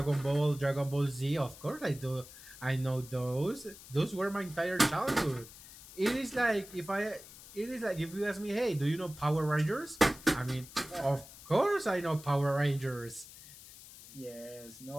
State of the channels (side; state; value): left; noise; hiss, 18 dB below the sound